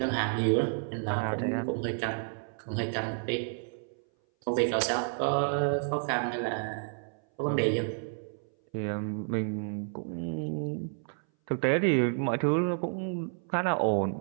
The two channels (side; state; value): left; silent; 57 dB below the other